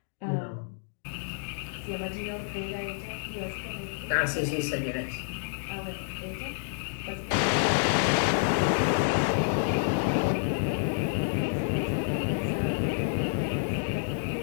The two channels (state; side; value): silent; right; digital silence